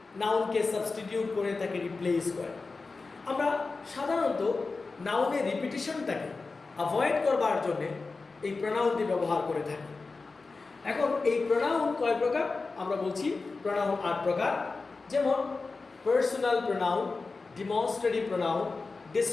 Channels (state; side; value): quieter; right; 4.0 dB